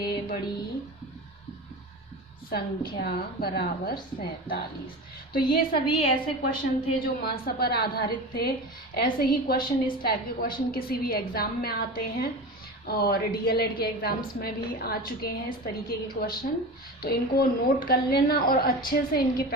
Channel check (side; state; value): both; normal; correlation 0.29